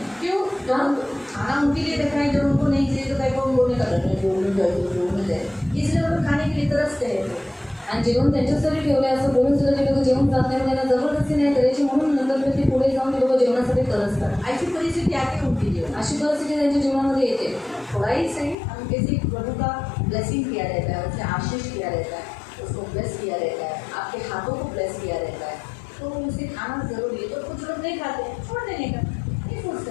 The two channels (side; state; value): right; drops out; at 18.6 s